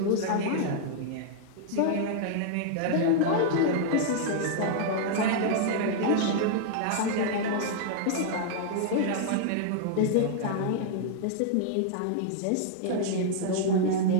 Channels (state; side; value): different; both; correlation -0.01